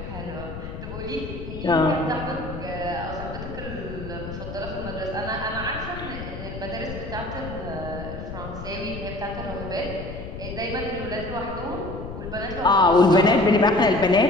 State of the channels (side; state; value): left; noise; rumble, 9 dB below the sound